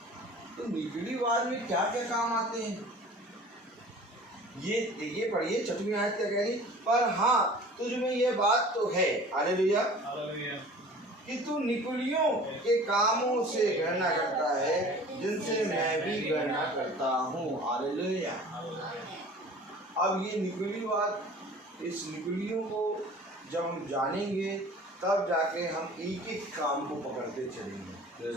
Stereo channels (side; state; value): both; normal; correlation 0.44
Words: तो निकुलीवाद में क्या क्या काम आते हैं? ये पढ़िए 6वीं आयत क्या कह रही? पर हाँ, तुझ में ये बात तो है, हालेलुया, कि तू निकुलियों के कामों से घृणा करता है, जिनसे मैं भी घृणा करता हूँ। हालेलुया। अब ये निकुलीवाद, इस निकुलियों को जब हम जानेंगे तब जाके हम एक एक काम को पकड़ते चलेंगे।